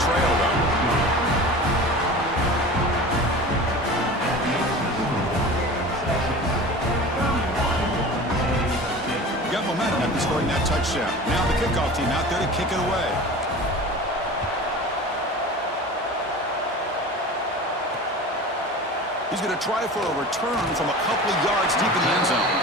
trail, though. Got momentum after scoring that touchdown. Now the kickoff team out there to kick it away. He's going to try for a return from a couple of yards deep in the end zone.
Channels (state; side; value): normal; both; correlation 0.36